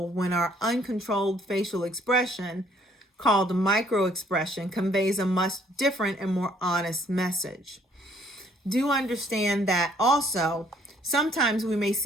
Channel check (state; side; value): normal; both; correlation 0.63